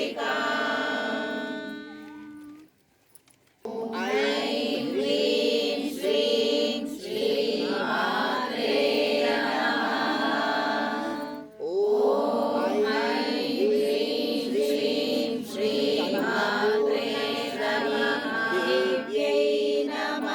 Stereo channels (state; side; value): identical; both; correlation 1.00